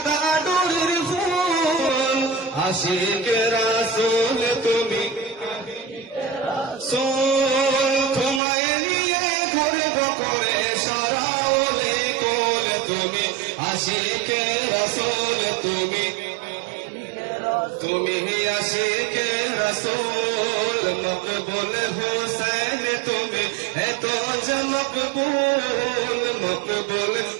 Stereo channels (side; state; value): left; drops out; at 8.4 s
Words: ফুল। আশিকে রাসূল তুমি তোমায় নিয়ে ঘুরব করে সারা ওলে কোল, তুমি আশিকে রাসূল তুমি আশিকে রাসূল। মকবুল হোসেন তুমি এত যে মকবুল, মকবুল